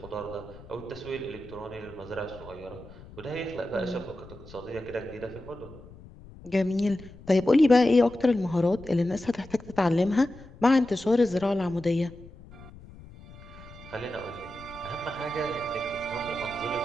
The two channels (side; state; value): left; noise; rumble, 19 dB below the sound